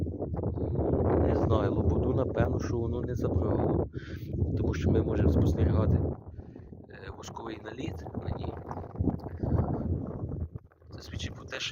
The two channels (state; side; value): identical; both; correlation 1.00